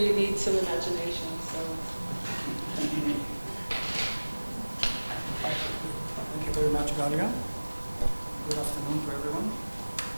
need some imagination. So. Thank you very much, Galia. Good afternoon to everyone.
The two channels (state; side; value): inverted; both; correlation -1.00